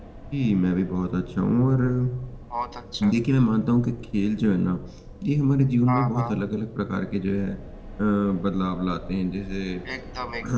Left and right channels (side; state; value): both; identical; correlation 1.00